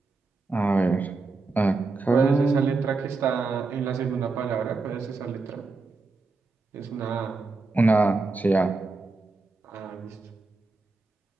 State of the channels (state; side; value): quieter; left; 3.8 dB